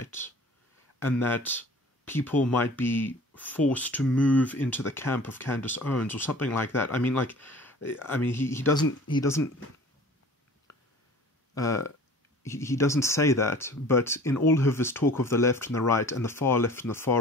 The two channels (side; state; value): both; normal; correlation 0.45